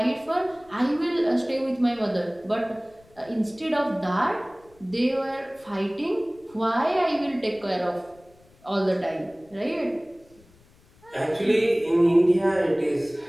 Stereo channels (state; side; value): noise; left; rumble, 29 dB below the sound